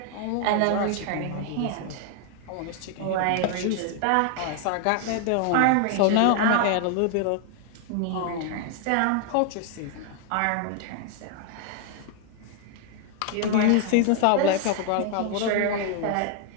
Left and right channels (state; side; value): different; both; correlation 0.00